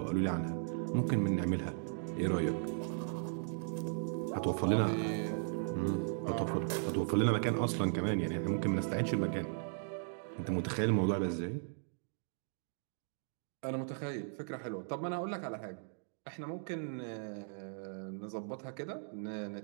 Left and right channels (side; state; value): left; silent; digital silence